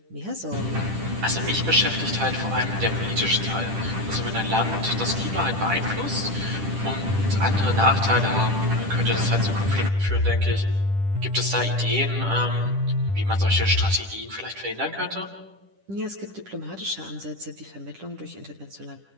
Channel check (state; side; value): late; left; 10 ms